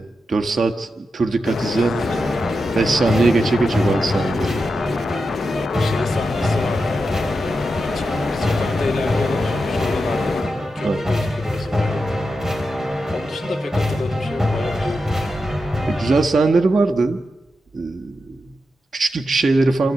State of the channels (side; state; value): both; normal; correlation 0.88